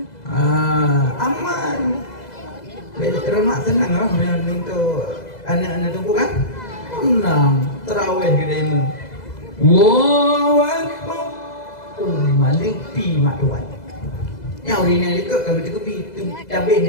Aman. Rumah senang lah, untuk anak-anak tunggu kan? Senang, terawih gedemu. Allahu Akbar. Oh, malipi mak tuan. Yang orang yang lekuk kalau kita pergi cabin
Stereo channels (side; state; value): right; late; 2.0 ms